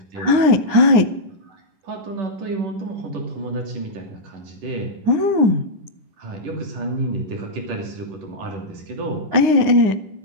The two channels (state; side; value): late; left; 9.7 ms